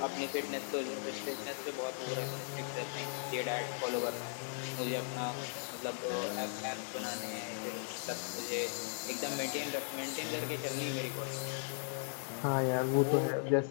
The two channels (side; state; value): right; silent; digital silence